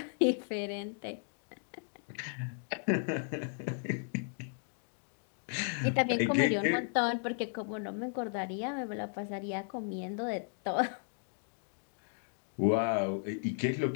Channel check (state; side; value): silent; right; 54 dB below the other